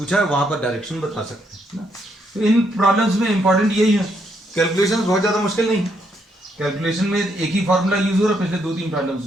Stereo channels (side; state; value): both; normal; correlation 0.75